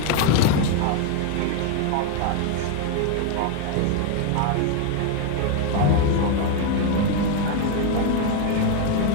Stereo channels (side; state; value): both; different; correlation 0.01